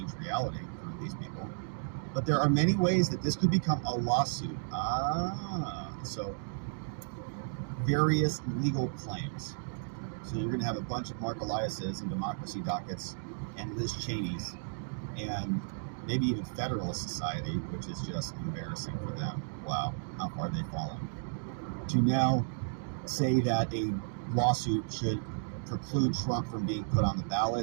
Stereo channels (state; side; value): silent; left; digital silence